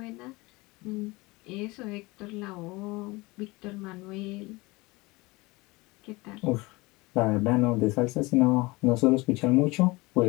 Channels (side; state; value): right; quieter; 23.2 dB